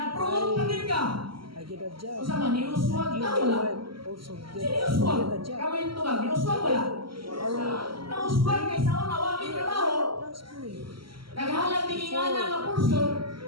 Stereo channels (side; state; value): left; late; 0.74 ms